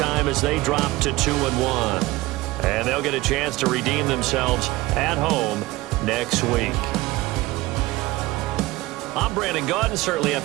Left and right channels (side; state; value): left; quieter; 19.3 dB